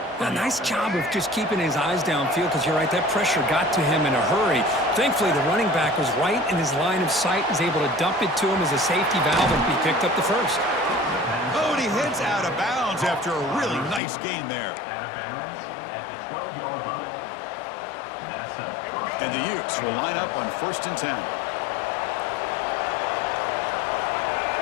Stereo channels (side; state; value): right; drops out; at 14.0 s